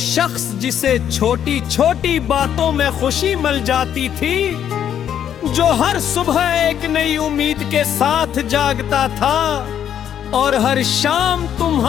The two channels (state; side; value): quieter; right; 9.6 dB